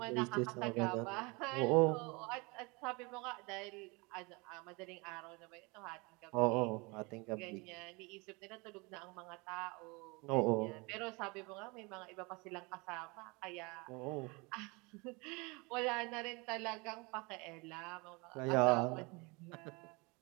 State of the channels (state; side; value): quieter; left; 27.7 dB